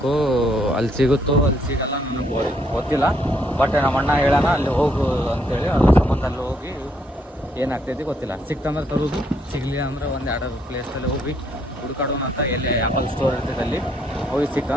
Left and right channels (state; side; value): normal; both; correlation 0.72